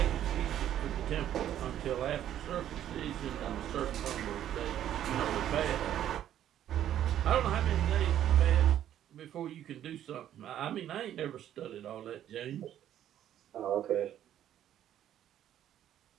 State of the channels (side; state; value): left; quieter; 11.2 dB